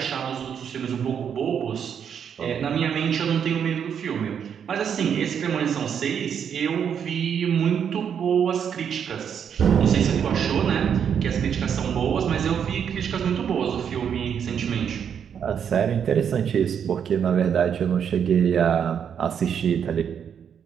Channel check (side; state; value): left; quieter; 7.9 dB